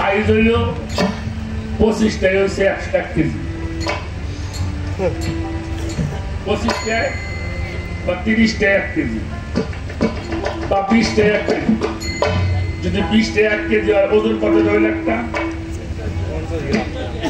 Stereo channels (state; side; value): identical; both; correlation 1.00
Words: হইল 25টাই হচ্ছে 100 কেজি, 25টায় বা 30টায় 1 কেজি বা 20টায় 1 কেজি। যদি 20টায় 1 কেজি হয় ওজন কত রইল? একটা